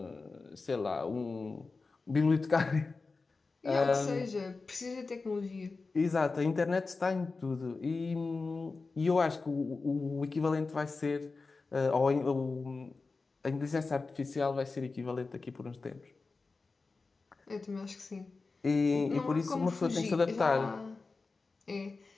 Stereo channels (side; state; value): right; quieter; 4.0 dB